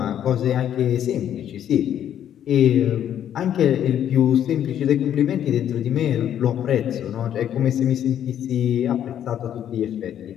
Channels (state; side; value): quieter; right; 10.2 dB